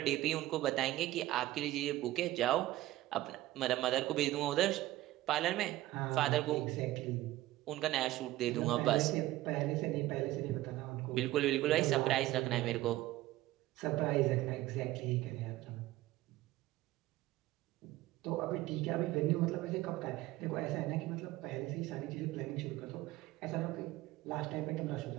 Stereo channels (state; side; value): quieter; left; 16.3 dB